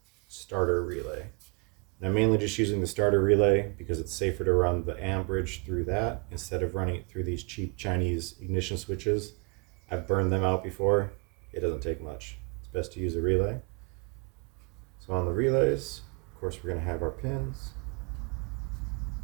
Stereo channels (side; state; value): left; quieter; 35.0 dB